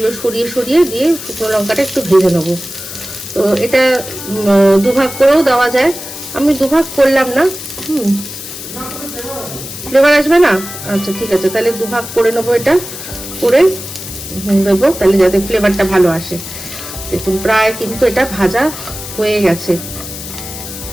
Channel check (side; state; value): left; noise; hiss, 10 dB below the sound